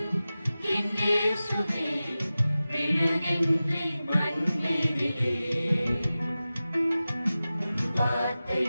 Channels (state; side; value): inverted; both; correlation -0.95